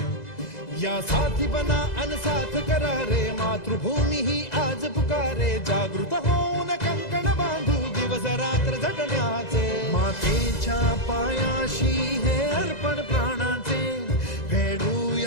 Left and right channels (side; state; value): right; late; 2.0 ms